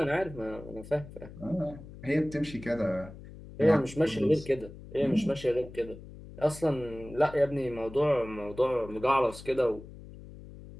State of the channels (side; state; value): left; noise; hum, 16 dB below the sound